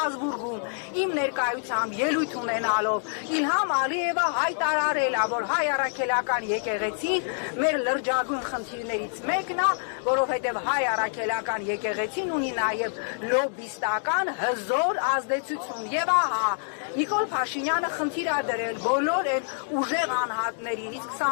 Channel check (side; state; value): right; silent; digital silence